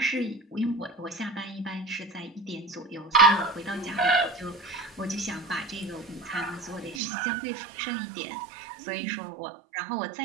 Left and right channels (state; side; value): drops out; left; at 7.0 s